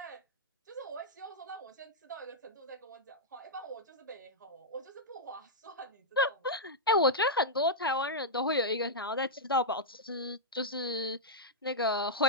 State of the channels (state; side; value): normal; both; correlation -0.09